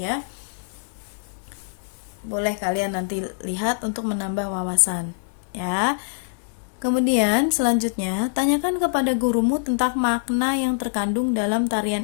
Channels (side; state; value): right; silent; digital silence